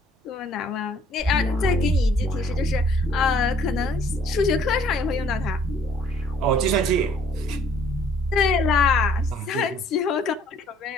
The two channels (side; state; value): both; normal; correlation 0.60